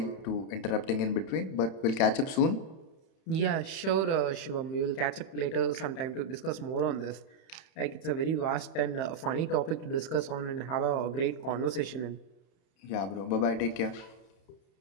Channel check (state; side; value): late; right; 30 ms